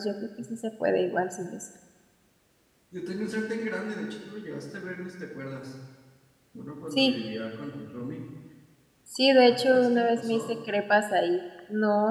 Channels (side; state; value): both; identical; correlation 1.00